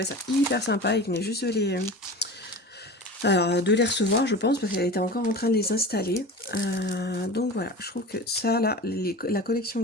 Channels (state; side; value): normal; both; correlation 0.33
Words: ça hyper sympa. Il venait juste de les recevoir, je pense, parce qu'elle était encore en train de les installer. Donc voilà, je trouve que ça, là, la collection